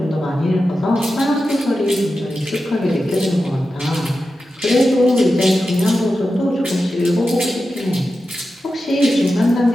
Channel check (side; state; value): both; normal; correlation 0.91